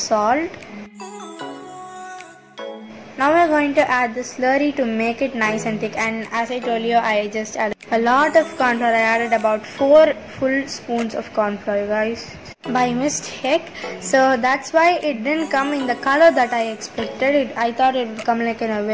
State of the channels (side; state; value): both; identical; correlation 1.00